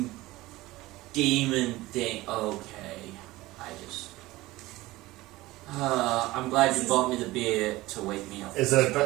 demon thing. Okay, I'm glad you bought me the beer to wake me up. Is it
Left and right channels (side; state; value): left; quieter; 18.9 dB